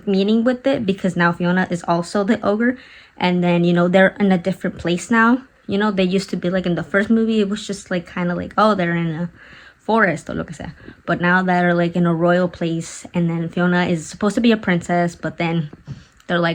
meaning with it, because now Fiona is also the ogre, and then they're in a different place now. They used to be like in the first movie, it was just like kind of like, oh, they're in a forest or lo que sea, but now they're like in a royal place, and then Fiona is supposed to be a princess, but then they're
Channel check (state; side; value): identical; both; correlation 1.00